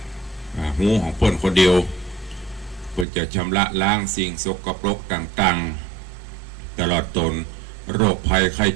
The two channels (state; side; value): drops out; left; at 3.1 s